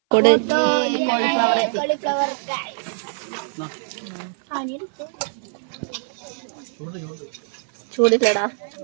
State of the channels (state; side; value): silent; left; 58 dB below the other